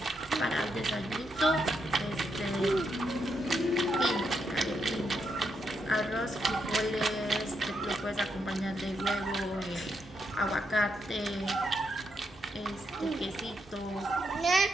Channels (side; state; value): both; normal; correlation 0.81